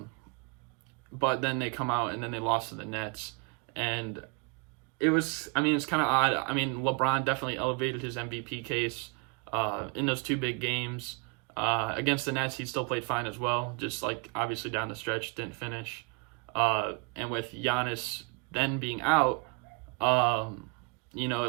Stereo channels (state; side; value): quieter; left; 32.6 dB